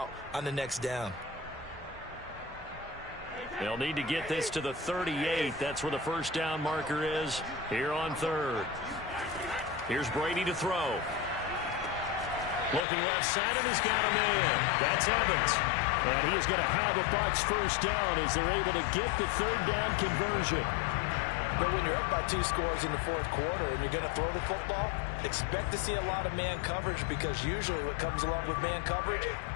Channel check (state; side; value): drops out; right; at 12.9 s